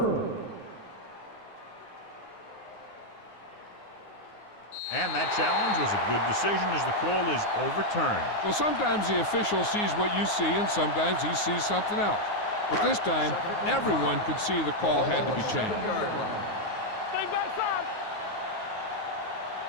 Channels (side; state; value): right; late; 9.5 ms